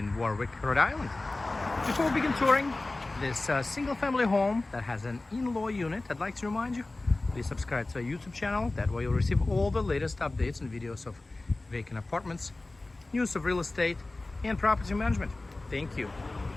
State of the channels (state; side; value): quieter; right; 3.0 dB